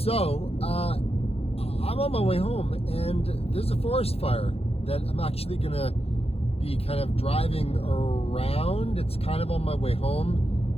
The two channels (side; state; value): right; late; 0.29 ms